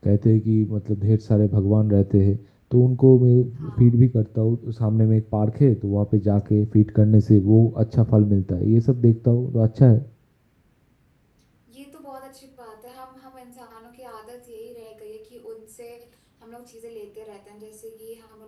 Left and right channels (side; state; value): both; identical; correlation 1.00